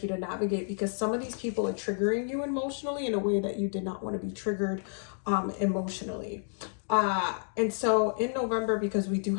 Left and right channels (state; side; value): silent; right; digital silence